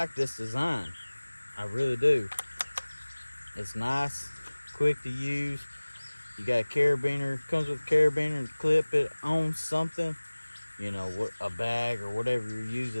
this design. I really do. It's nice, quick to use. You got a carabiner, comes with a carabiner to clip it on something, you know, a bag or whatever you're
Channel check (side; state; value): both; inverted; correlation -1.00